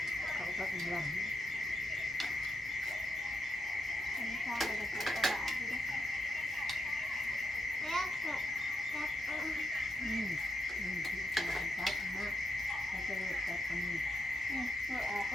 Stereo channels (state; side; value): normal; both; correlation 0.82